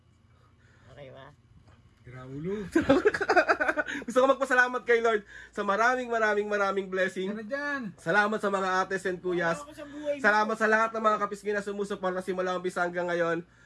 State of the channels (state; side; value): identical; both; correlation 1.00